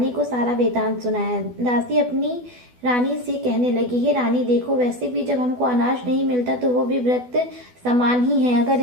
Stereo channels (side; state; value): left; late; 12 ms